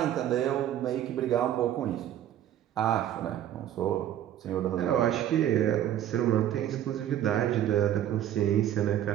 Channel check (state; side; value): quieter; left; 11.4 dB